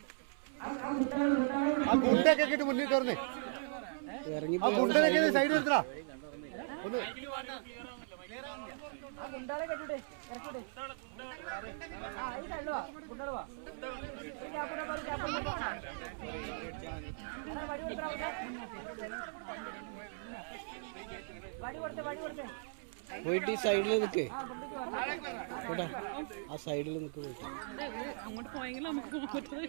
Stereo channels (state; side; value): silent; left; 53 dB below the other